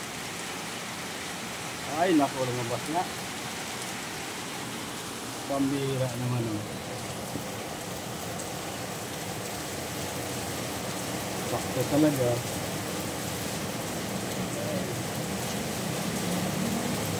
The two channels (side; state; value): both; identical; correlation 1.00